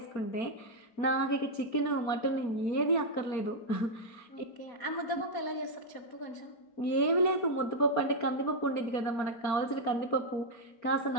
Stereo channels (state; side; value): late; right; 4.4 ms